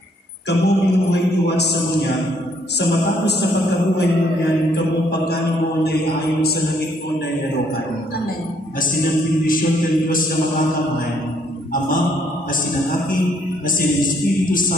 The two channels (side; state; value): both; normal; correlation 0.67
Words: kamo binuhay iwan sa munya, sa matapos na pagkabuhay mo yan, kamong pagkain mo na iayon sa langit mo na ilarokan. Amen. Asin ang bendisyon ng Diyos na makakamay, Ama, asin ang Aki, asin ang Espiritu